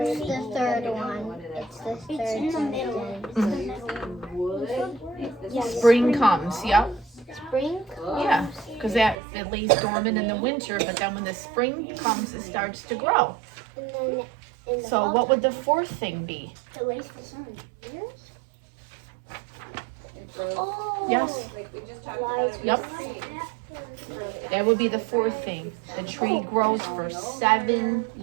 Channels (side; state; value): left; drops out; at 9.2 s